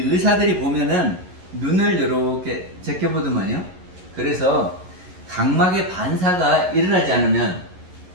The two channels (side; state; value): left; late; 11 ms